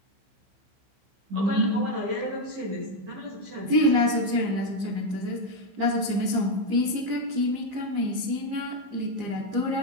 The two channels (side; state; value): left; late; 15 ms